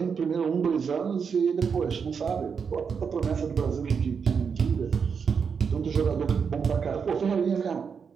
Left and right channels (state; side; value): quieter; left; 6.2 dB